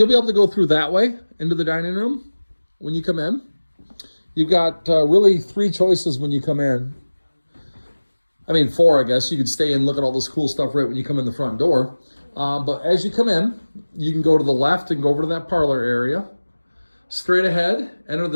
be able to go through that way into the dining room when you come in. You've got really 3 choices when you come in. I mean, 4, I guess. You could stay and look at all this cool stuff right when you come in the front door. But as you come in, you can go to the left and go over to that parlor area. Straight ahead, enter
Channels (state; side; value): inverted; both; correlation -1.00